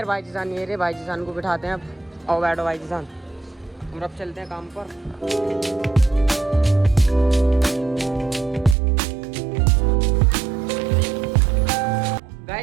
भाई जी जान ये रहे, भाई जी जान को बिठाते हैं अब। आओ बैठो भाई जी जान, और अब चलते हैं काम पर।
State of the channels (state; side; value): drops out; left; at 8.8 s